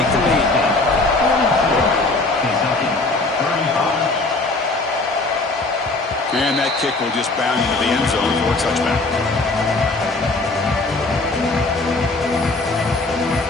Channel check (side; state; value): right; quieter; 3.3 dB